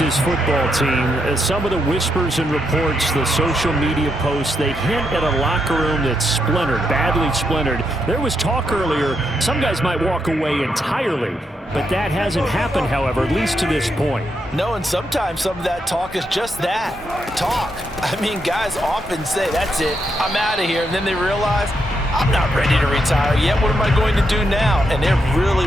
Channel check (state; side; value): normal; both; correlation 0.81